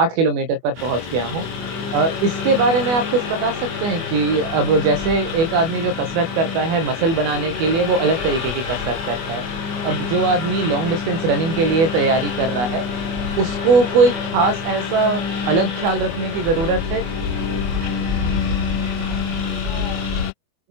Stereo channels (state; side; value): late; left; 24 ms